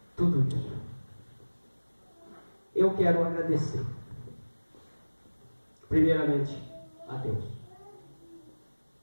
tudo isso, eu quero agradecer, primeiramente, a Deus,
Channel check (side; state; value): both; inverted; correlation -1.00